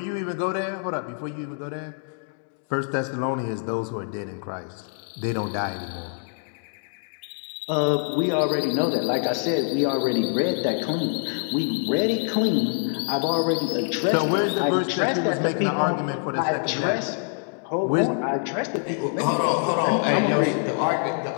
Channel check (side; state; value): right; silent; 55 dB below the other